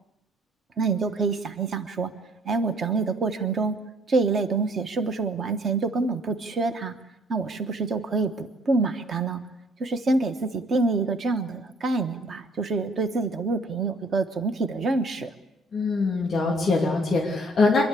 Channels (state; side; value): normal; both; correlation 0.59